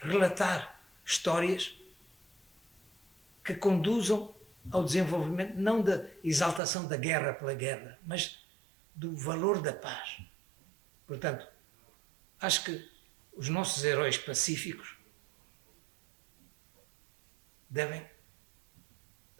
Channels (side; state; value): left; drops out; at 6.6 s